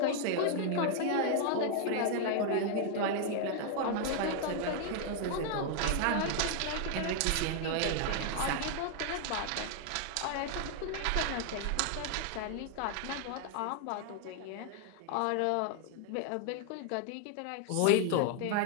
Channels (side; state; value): both; different; correlation 0.00